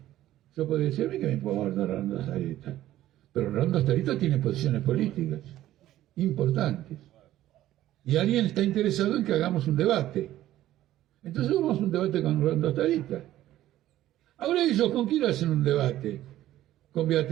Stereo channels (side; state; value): left; quieter; 13.9 dB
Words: Yo podría decir a mí que me puedo hablar de Rolando Starita, pero Rolando Starita tiene posiciones políticas importantes. Y alguien está interesado en que hagamos un debate. Entonces vamos a un debate con Rolando Starita. Ahora ellos, ¿con quién hacen un debate? Con